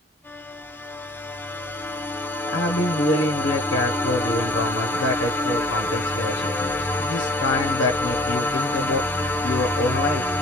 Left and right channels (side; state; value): both; normal; correlation 0.51